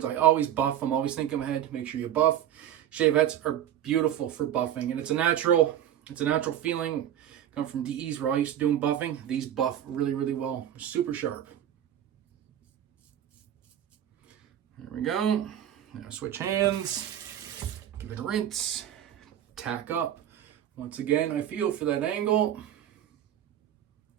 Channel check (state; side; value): quieter; left; 10.8 dB